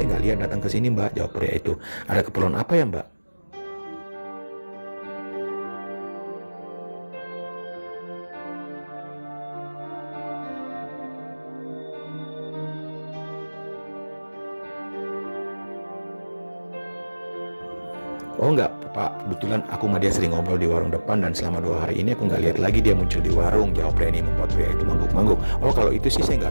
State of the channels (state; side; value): inverted; both; correlation -1.00